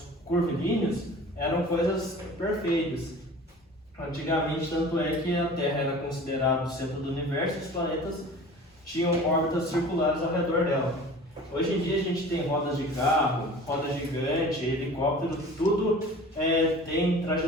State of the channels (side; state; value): both; normal; correlation 0.42